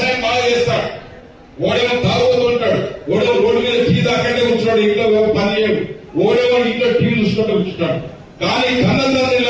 బాగా చేస్తాడు, ఓడేమో తాగుతూ ఉంటాడు, ఓడేమో రోడ్డు మీద టీ దాకంటే కూర్చున్నాడు, ఇంట్లో పని చేయడు, ఓడేమో ఇంట్లో టీవీ చూసుకుంటూ కూర్చుంటాడు. కానీ కన్నతండ్రి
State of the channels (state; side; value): identical; both; correlation 1.00